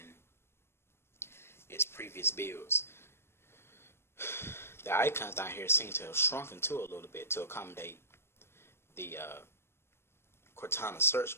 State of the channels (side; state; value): right; late; 0.12 ms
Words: its previous builds. The icons down here seem to have shrunken too a little bit to accommodate the Cortana